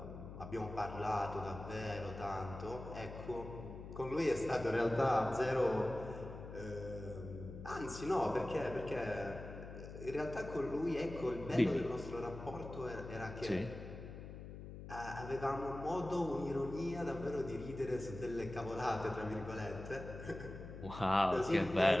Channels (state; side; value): noise; left; hum, 11 dB below the sound